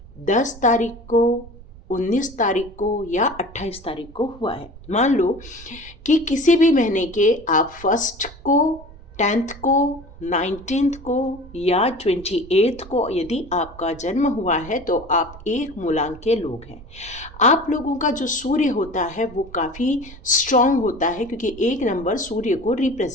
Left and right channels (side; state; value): right; noise; rumble, 18 dB below the sound